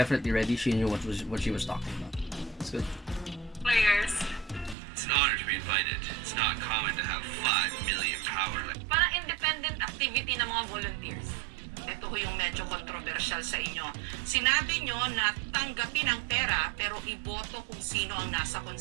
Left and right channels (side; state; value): left; drops out; at 4.8 s